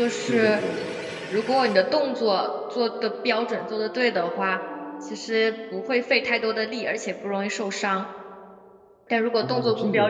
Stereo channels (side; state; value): both; identical; correlation 1.00